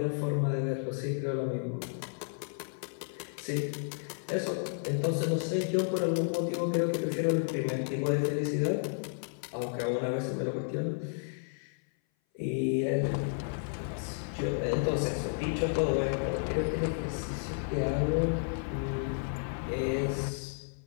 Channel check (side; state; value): right; silent; 56 dB below the other